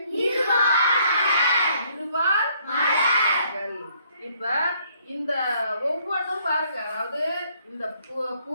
இருவாள் மலர்கள். இப்ப இந்த ஒவ்வொன்றும் பாருங்க, அதாவது இந்த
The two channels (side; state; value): both; inverted; correlation -0.66